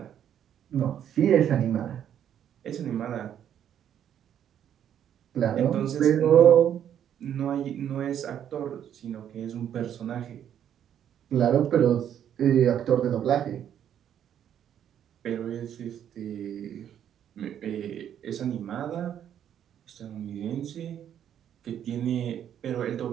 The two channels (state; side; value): quieter; left; 9.8 dB